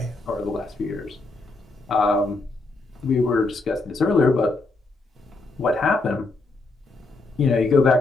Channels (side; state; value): right; quieter; 3.3 dB